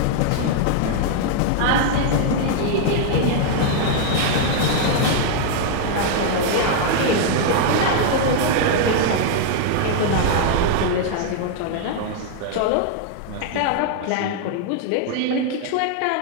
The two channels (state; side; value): different; both; correlation 0.00